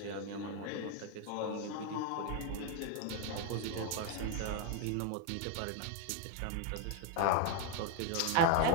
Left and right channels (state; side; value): different; both; correlation 0.01